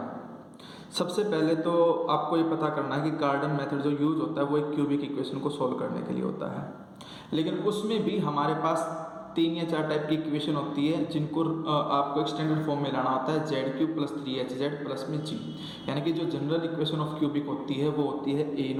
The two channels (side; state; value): both; identical; correlation 1.00